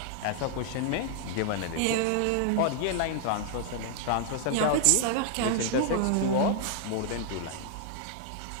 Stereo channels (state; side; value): different; both; correlation 0.00